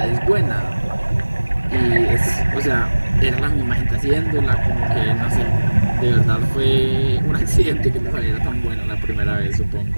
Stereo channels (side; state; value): both; inverted; correlation -1.00